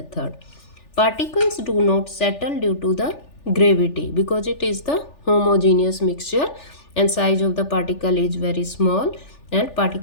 Particles do not settle due to the gravity because it is the homogeneous mixture and size of the particle is very small, and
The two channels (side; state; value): right; late; 3.4 ms